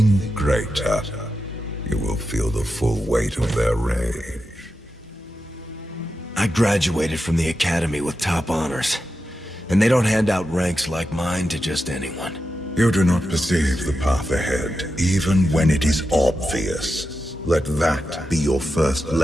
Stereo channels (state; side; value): normal; both; correlation 0.89